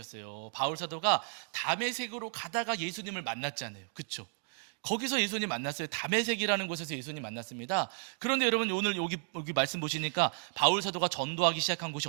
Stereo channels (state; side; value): silent; left; 56 dB below the other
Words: 바울 사도가 다메섹으로 가다가 예수님을 만났잖아요. 그렇죠? 거기서 예수님 만났어요. 다메섹이라는 곳에서 예수님 만났습니다. 그런데 여러분 오늘 여기 말씀 보시니까 바울 사도가 전도하기 시작한 곳이